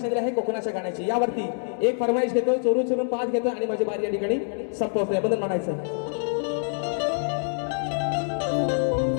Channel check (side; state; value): right; silent; 61 dB below the other